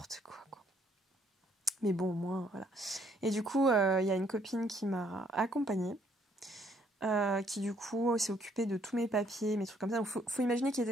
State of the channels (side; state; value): both; normal; correlation 0.67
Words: quoi. Mais bon, au moins voilà. Et du coup il y a une copine qui m'a accompagnée, qui du coup s'est occupée de tous mes papiers, mes trucs comme ça. Donc faut imaginer qu'il